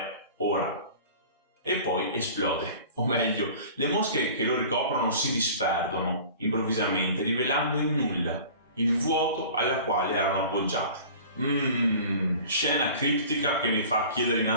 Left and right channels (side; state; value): both; inverted; correlation -0.42